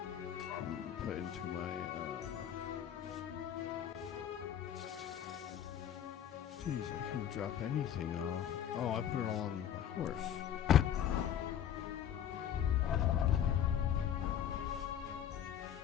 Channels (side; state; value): right; quieter; 9.8 dB